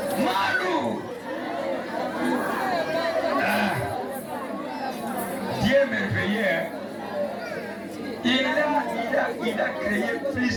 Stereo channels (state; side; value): identical; both; correlation 1.00